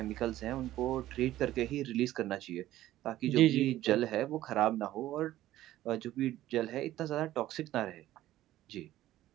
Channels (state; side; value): quieter; left; 14.4 dB